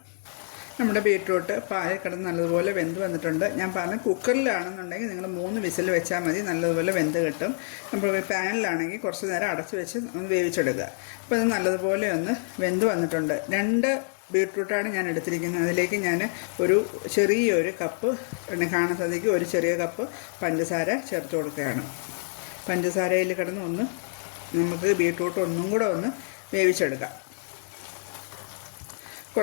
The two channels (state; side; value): silent; right; digital silence